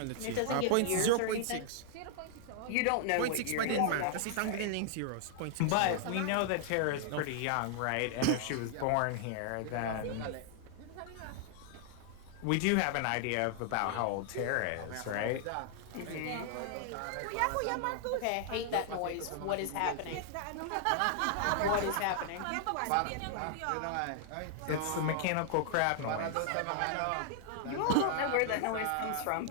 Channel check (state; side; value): different; both; correlation -0.01